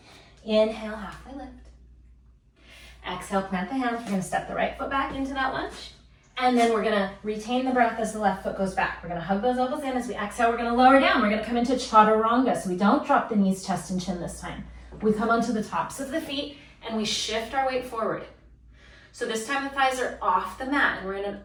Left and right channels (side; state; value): both; identical; correlation 1.00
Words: Inhale, halfway lift. Exhale, plant the hands. We're gonna step the right foot back into that lunge. And then we're gonna retain the breath as the left foot goes back. We're gonna hug those elbows in. As we exhale, we're gonna lower down. We're gonna come into chaturanga. So we don't drop the knees, chest, and chin this time. We come onto the tops of the feet and we shift our weight forward. So this time the thighs are off the mat and we're in an